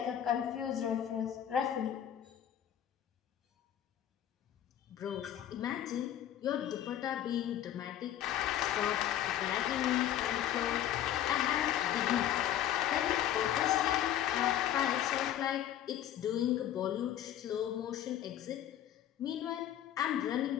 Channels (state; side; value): quieter; right; 11.2 dB